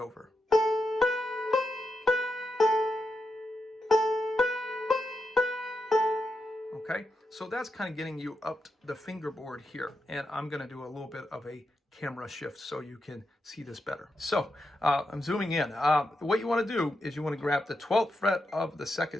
Okay, so that's kind of getting you up the fingerboard here, and I'm going to do a little bit of a camera shift so you can see this better. So I'm zooming in. What you want to do is you want to grab the 12th fret of the second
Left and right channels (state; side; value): normal; both; correlation 0.86